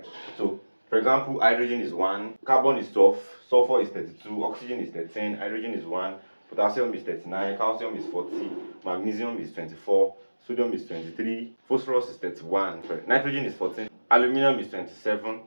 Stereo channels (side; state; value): both; inverted; correlation -1.00